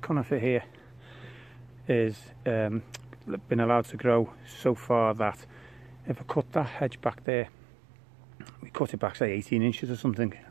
here is been allowed to grow so far that if I cut that hedge back there, we cut it back say 18 inches or something,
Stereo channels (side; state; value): left; drops out; at 7.2 s